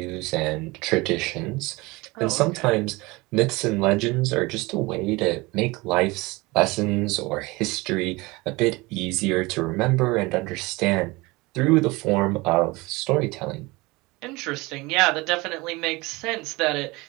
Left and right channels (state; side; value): quieter; left; 23.2 dB